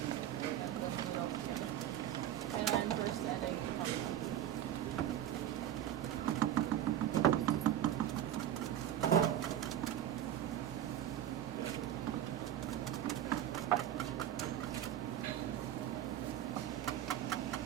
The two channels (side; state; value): left; quieter; 11.2 dB